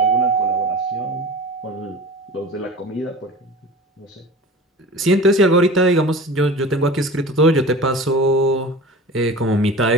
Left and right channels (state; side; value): normal; both; correlation 0.36